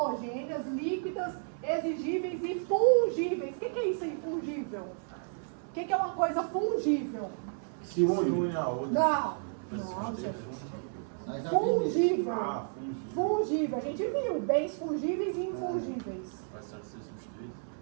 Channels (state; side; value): silent; left; 56 dB below the other